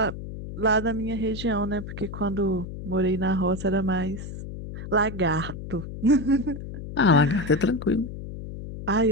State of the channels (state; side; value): noise; left; hum, 9 dB below the sound